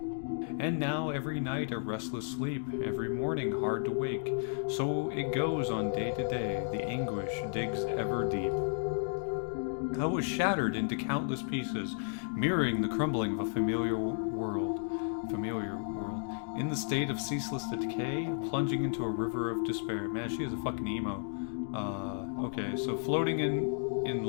And now every night a restless sleep, every morning hard to wake. So it goes on day to day, the anguish digs ever deep. I was shattered into countless pieces, mirroring the crumbling of a familiar world. In the state of ceaseless decay, plunging into a river of despair. Man, she is a fucking emo. Okay, so floating in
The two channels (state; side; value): silent; right; digital silence